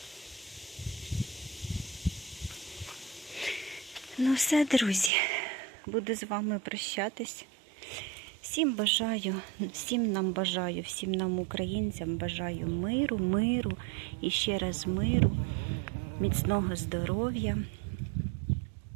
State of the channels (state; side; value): drops out; left; at 5.1 s